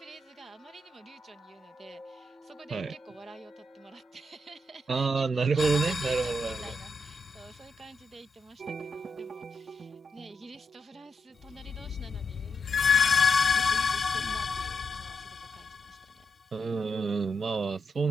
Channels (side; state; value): both; normal; correlation 0.82